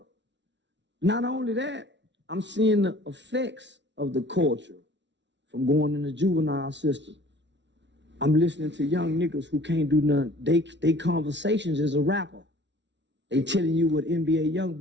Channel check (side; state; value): left; late; 0.52 ms